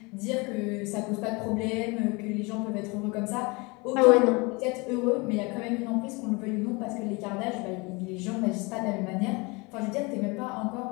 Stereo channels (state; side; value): quieter; right; 27.2 dB